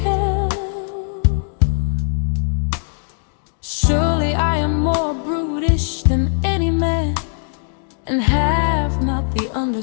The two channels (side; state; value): right; silent; digital silence